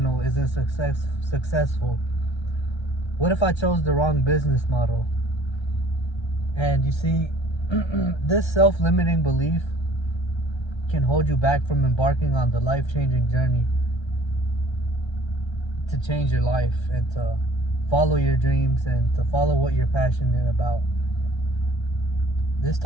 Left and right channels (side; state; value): right; late; 1.3 ms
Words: isn't successful? What if I chose the wrong business model? And you see, this self-limiting belief can hold you back from embarking on the life-changing journey to change your life and to follow your dreams and to follow what you're passionate about. This